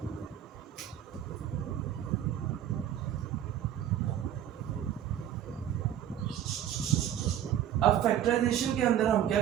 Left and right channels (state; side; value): quieter; left; 10.6 dB